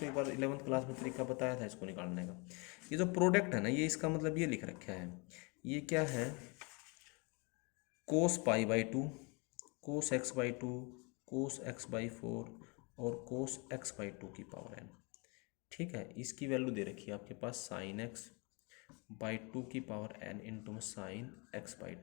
एक बार 11th क्लास में तरीका बताया था इसको निकालने का। ये जो प्रोडक्ट है ना, ये इसका मतलब ये लिख रखा है, ये क्या है, cos pi by two, cos x by two, cos x by four और कोस एक्स बाई टू की पावर एन। ठीक है, इसकी वैल्यू दे रखी है आपके पास साइन एक्स बाई टू की पावर एन इंटू में साइन एक्स बाई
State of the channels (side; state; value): right; quieter; 30.7 dB